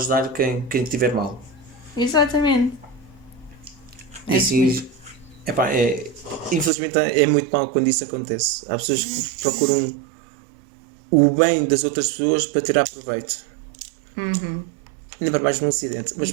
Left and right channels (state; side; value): drops out; left; at 6.7 s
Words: quem estiver mal. Exatamente. E É isso mesmo. assim, epá, infelizmente é muito mal quando isso acontece. Há pessoas que procuram o bem das outras pessoas para tirar proveito. Ainda para mais num acidente, mas